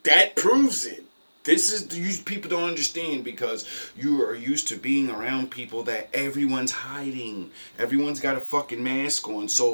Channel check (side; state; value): both; inverted; correlation -1.00